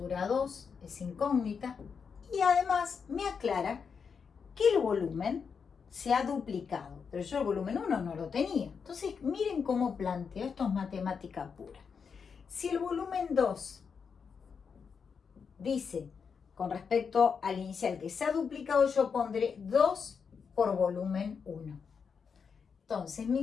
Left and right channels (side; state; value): right; quieter; 6.1 dB